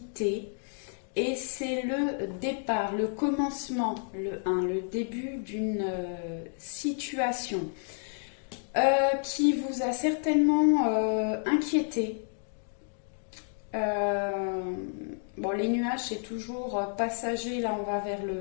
Et c'est le départ, le commencement, le début d'une situation qui vous a certainement inquiété. Les nuages, c'est toujours passager, là on va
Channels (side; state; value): right; silent; 57 dB below the other